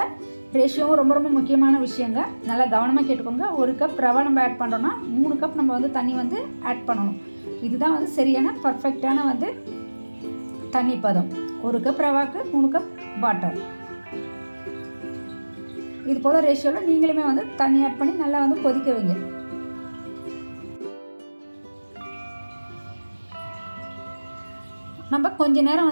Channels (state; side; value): inverted; both; correlation -1.00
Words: ரேஷியோவும் ரொம்ப ரொம்ப முக்கியமான விஷயங்க. நல்லா கவனமாக கேட்டுக்கோங்க. 1 கப் ரவை நம்ம ஆட் பண்ணுறோன்னா 3 கப் நம்ம வந்து தண்ணி வந்து ஆட் பண்ணணும். இதுதான் வந்து சரியான பர்ஃபெக்டான வந்து தண்ணி பதம். 1 கப் ரவாக்கு 3 கப் வாட்டர். இது போல் ரேஷியோவில் நீங்களுமே வந்து தண்ணி ஆட் பண்ணி நல்லா வந்து கொதிக்க வைங்க. நம்ம கொஞ்ச நேரம்